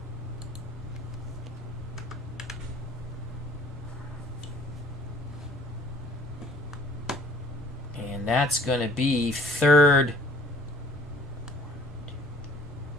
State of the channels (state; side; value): normal; both; correlation 0.54